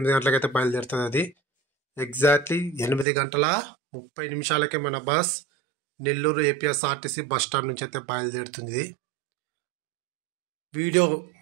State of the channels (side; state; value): left; drops out; at 3.1 s